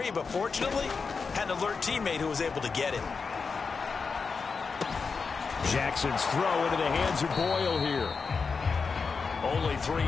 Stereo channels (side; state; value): right; quieter; 5.0 dB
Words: but fortunately, had an alert teammate who was able to get it. Jackson's throw into the hands of Boyle here. Only 3